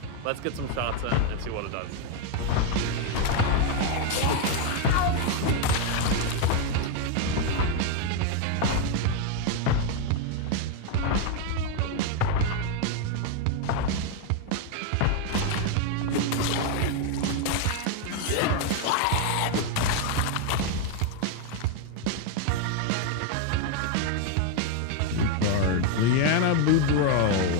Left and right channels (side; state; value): both; different; correlation 0.01